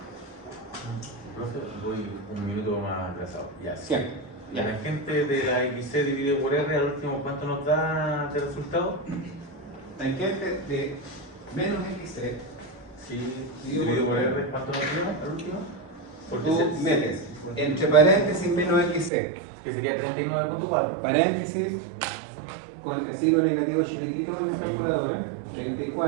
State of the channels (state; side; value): drops out; left; at 19.1 s